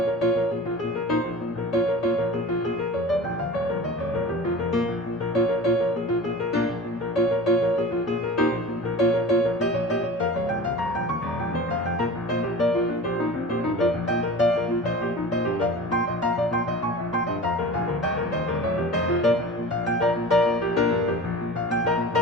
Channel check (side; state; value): both; normal; correlation 0.36